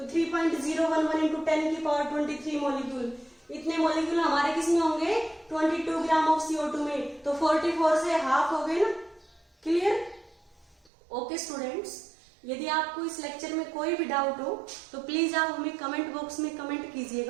3.011 इंटू 10 की पावर 23 मॉलिक्यूल। इतने मॉलिक्यूल हमारे किसमें होंगे 22 ग्राम ऑफ CO2 में। तो 44 से हाफ हो गए ना। क्लियर। ओके स्टूडेंट्स, यदि आपको इस लेक्चर में कोई भी डाउट हो तो प्लीज आप हमें कमेंट बॉक्स में कमेंट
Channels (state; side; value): drops out; left; at 10.9 s